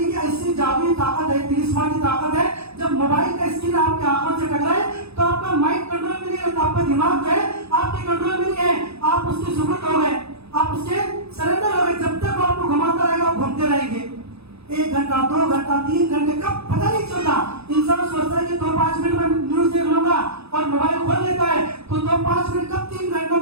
ऐसी जादुई ताकत है, तिलिस्मानी ताकत है, जब मोबाइल का स्क्रीन आपकी आंखों से टकराए तो आपका माइंड कंट्रोल में नहीं रहता, आपका दिमाग जो है आपके कंट्रोल में नहीं है, आप उसके सुपुर्द हो गए, आप उसके सरेंडर हो गए। जब तक वो आपको घुमाता रहेगा आप घूमते रहेंगे। 1 घंटा 2 घंटा 3 घंटे कब पता नहीं चलता। इंसान सोचता है कि 2-5 मिनट में न्यूज देख लूंगा और मोबाइल खोल लेता है, तो 2-5 मिनट कब 3 घंटों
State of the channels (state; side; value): late; left; 0.79 ms